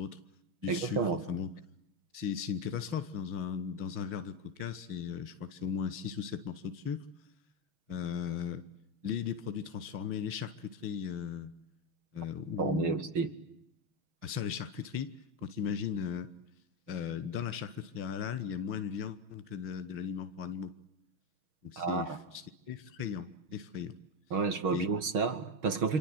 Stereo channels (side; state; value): left; late; 6.4 ms